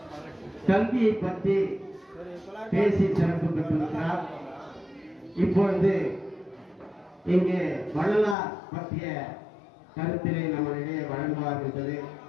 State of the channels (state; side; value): drops out; right; at 8.3 s